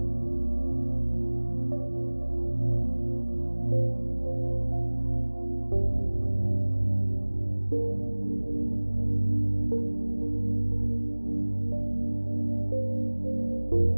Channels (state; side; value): inverted; both; correlation -1.00